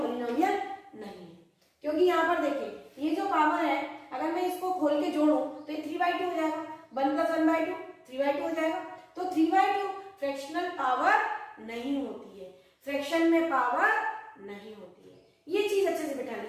नहीं है। क्योंकि यहाँ पर देखिए ये जो पावर है, अगर मैं इसको खोल के जोड़ूं तो ये 3/2 हो जाएगा, 1 + 1/2 3/2 हो जाएगा। तो 3/2 फ्रैक्शनल पावर नहीं होती है, फ्रैक्शन में पावर नहीं होती है। ये चीज अच्छे से बिठा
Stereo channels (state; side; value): identical; both; correlation 1.00